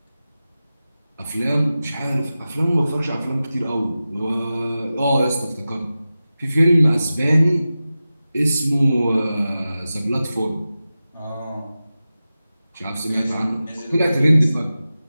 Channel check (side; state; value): both; inverted; correlation -0.94